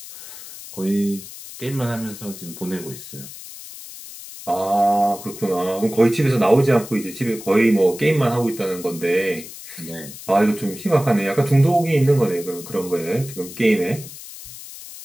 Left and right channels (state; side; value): noise; left; hiss, 14 dB below the sound